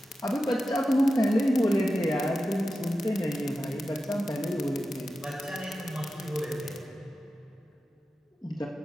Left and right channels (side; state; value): both; normal; correlation 0.92